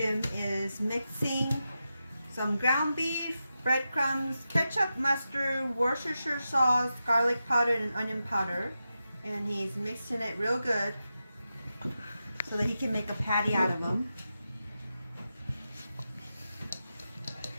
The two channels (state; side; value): inverted; both; correlation -0.90